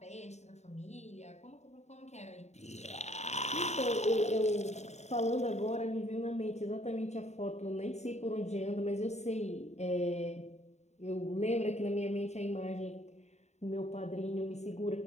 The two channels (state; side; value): late; right; 0.32 ms